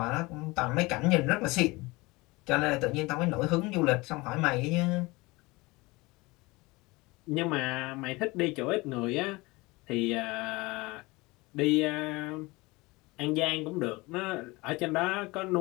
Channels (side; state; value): right; quieter; 23.1 dB